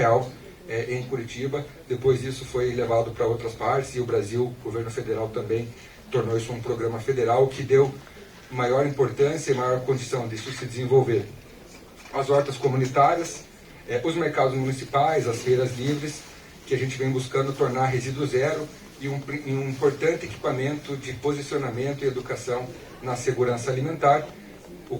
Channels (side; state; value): both; identical; correlation 1.00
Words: em Curitiba. Depois isso foi levado para outras partes e o Brasil, o governo federal também tornou isso um programa federal que deu maior importância e maior condição disso se desenvolver. As hortas comunitárias, os mercados municipais, as feiras livres, que a gente vem buscando tornar resíduo zero e um importante equipamento de posicionamento e educação na segurança alimentar, o